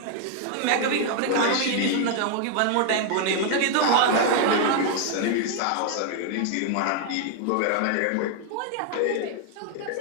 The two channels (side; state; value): both; different; correlation 0.00